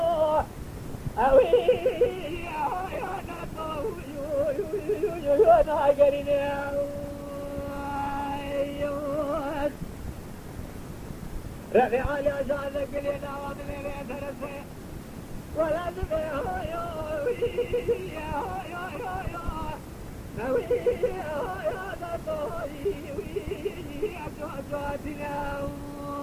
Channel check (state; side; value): identical; both; correlation 1.00